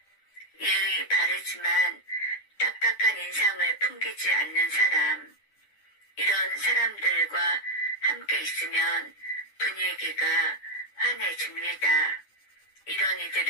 예의 바르지만 딱딱한 인상을 풍기지 않는 사람, 이런 사람들과 함께 있으면 분위기가 환해집니다. 이런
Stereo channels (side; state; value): right; late; 10 ms